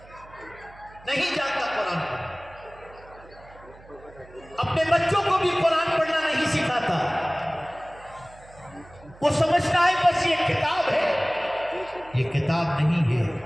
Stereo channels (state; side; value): noise; right; hum, 23 dB below the sound